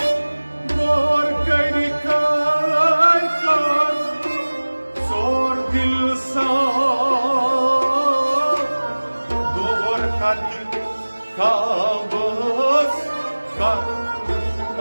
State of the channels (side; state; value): both; inverted; correlation -1.00